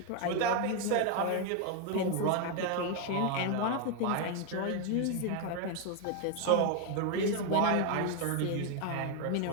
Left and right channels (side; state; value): both; different; correlation 0.01